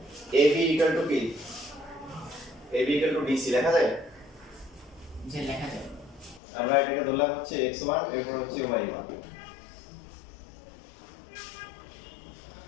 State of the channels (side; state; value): right; drops out; at 6.4 s